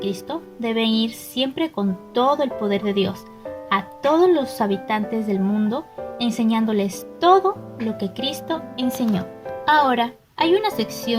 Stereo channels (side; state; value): both; identical; correlation 1.00